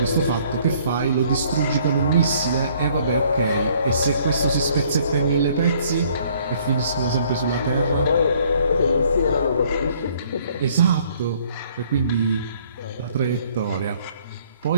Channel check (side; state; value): both; inverted; correlation -0.61